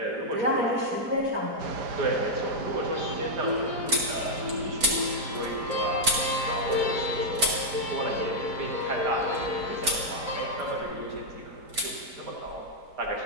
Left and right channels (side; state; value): left; late; 4.5 ms